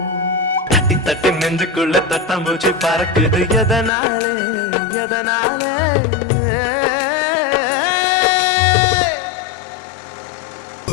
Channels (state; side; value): drops out; right; at 3.9 s